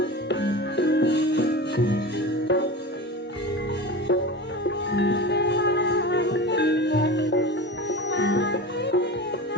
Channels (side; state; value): both; normal; correlation 0.30